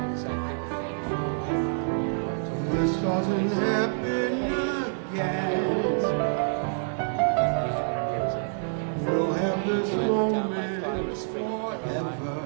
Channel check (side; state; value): left; silent; digital silence